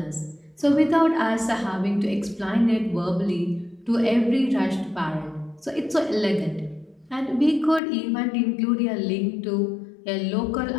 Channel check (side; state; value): right; drops out; at 7.8 s